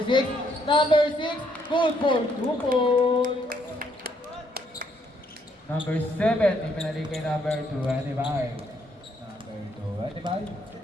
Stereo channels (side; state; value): both; normal; correlation 0.71